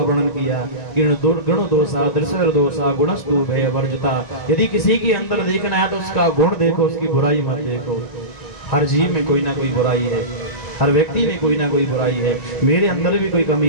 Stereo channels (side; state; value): right; late; 1.9 ms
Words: किया। गुण दोषा, दृश्य दोषा, गुणस्तु भय वर्जता। यदि किसी के अंदर देखना है तो उसका गुण देखो, उसकी बुराई मत देखो। हर जीव में कोई ना कोई बुराई है, हर व्यक्ति में कोई ना कोई बुराई है। मेरे अंदर भी कोई